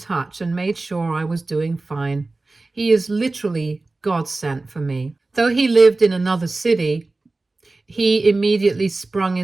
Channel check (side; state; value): left; quieter; 3.3 dB